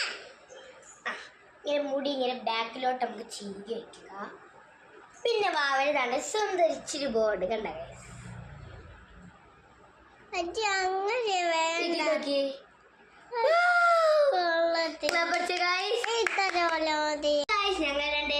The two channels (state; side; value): identical; both; correlation 1.00